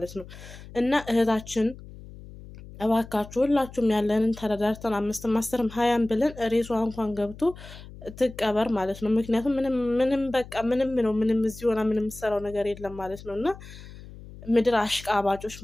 ነው። እና እህታችን እባካችሁ ሁላችሁም ያለንን ተረዳርተን 5ም 10ም 20ም ብለን ሬሷ እንኳን ገብቶ ትቀበር ማለት ነው። ምክንያቱም ምንም በቃ ምንም ነው ምንም እዚህ ሆና ምንም የምትሰራው ነገር የለም ማለት ነው። እና ምድር አሽቃባጮች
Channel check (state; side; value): noise; left; hum, 16 dB below the sound